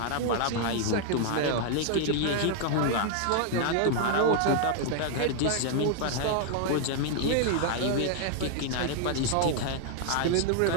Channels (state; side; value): different; both; correlation 0.00